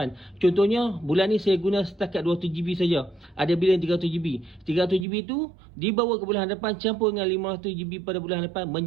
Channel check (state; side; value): drops out; left; at 5.1 s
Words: Contohnya bulan ni saya guna setakat 200GB saja. Ada bila 300GB. 300GB tu dibawa ke bulan hadapan campur dengan 500GB pada bulan hadapan